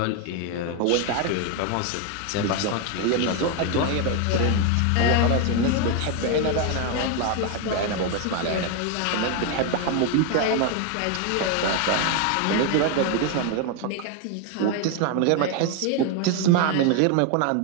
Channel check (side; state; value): both; different; correlation 0.01